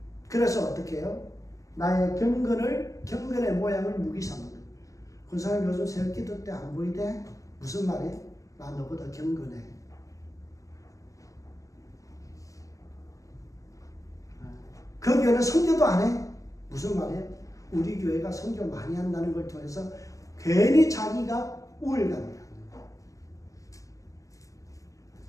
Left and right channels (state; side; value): late; right; 0.16 ms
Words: 그래서 어떻게 해요? 나의 경건의 모양을 무기 삼는 거예요. 그 사람 요즘 새벽 기도 때 안 보이대? 무슨 말이에요? 나 너보다 경건해. 그 교회는 선교도 안 해? 무슨 말이에요? 우리 교회가 선교 많이 한다는 걸 통해서 괜히 자기가 우월감이야.